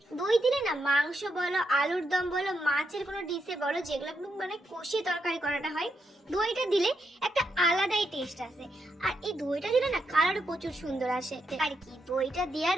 দই দিলে না মাংস বলো, আলুর দম বলো, মাছের কোনো ডিশে বলো, যেগুলো মানে কষিয়ে তরকারি করাটা হয়, দইটা দিলে একটা আলাদাই টেস্ট আসে। আর এই দইটা দিলে না কালারও প্রচুর সুন্দর আসে। আর কি দইটা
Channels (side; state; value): both; normal; correlation 0.82